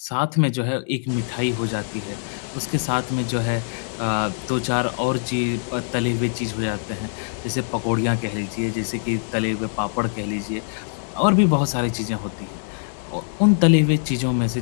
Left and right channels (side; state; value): right; silent; digital silence